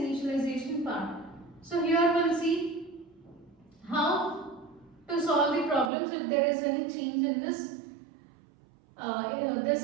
part. So here we'll see how to solve the problems if there is any change in this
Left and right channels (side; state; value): left; drops out; at 5.9 s